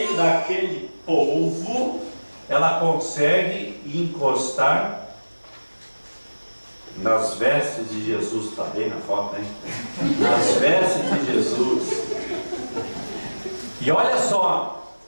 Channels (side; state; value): both; inverted; correlation -1.00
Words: daquele povo, ela consegue encostar nas vestes de Jesus. Está bem na foto, hein? Nas vestes de Jesus. E olha só,